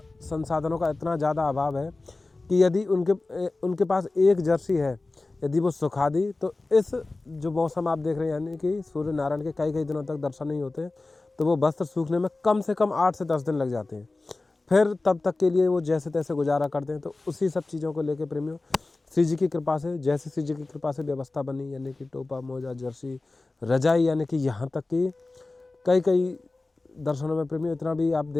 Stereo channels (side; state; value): right; quieter; 3.3 dB